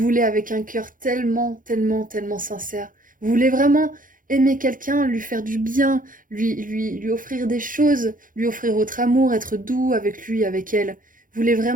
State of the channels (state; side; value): late; left; 0.39 ms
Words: avec un cœur tellement, tellement, tellement sincère. Vous voulez vraiment aimer quelqu'un, lui faire du bien, lui offrir des choses, lui offrir votre amour, être doux avec lui, avec elle. Vous voulez